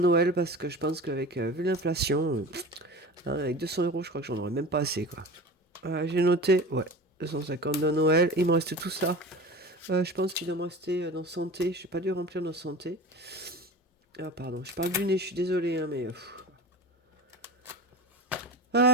parce que je pense qu'avec vu l'inflation, avec 200 euros, je crois que j'en aurais même pas assez. Quoi. J'ai noté, ouais, 250 de Noël. Il me reste tout ça. Je pense qu'il doit me rester dans santé. Je n'ai pas dû remplir dans santé. Ah, pardon. Je parle du nez, je suis désolé, hein, mais...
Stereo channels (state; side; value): normal; both; correlation 0.33